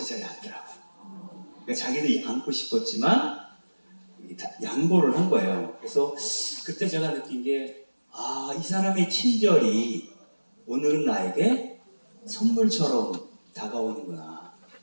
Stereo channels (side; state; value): both; inverted; correlation -1.00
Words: 자리에 앉더라고요. 그러니까 자기도 앉고 싶었지만 양보를 한 거예요. 그래서 그때 제가 느낀 게 이 사람의 친절이 오늘은 나에게 선물처럼 다가오는구나.